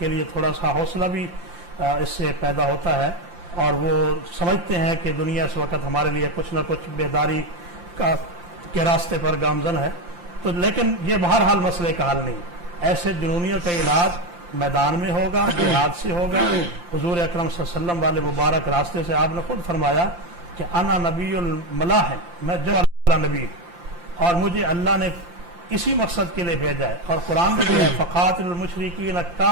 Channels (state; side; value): late; left; 5.8 ms